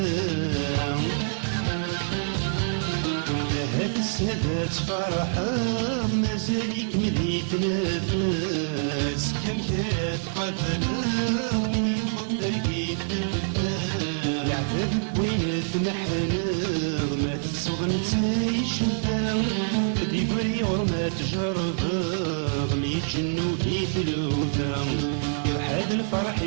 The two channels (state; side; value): silent; left; 61 dB below the other